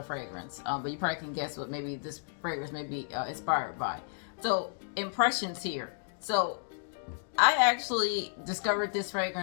fragrance. But you probably can guess what maybe this fragrance may be inspired by. So impressions here. So I actually discovered this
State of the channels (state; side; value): silent; right; digital silence